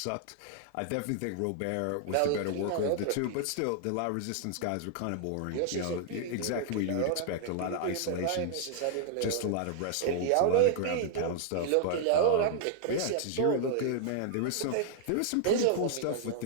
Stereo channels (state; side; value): different; both; correlation 0.00